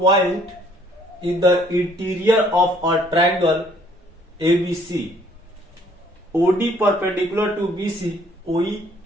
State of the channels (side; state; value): both; normal; correlation 0.61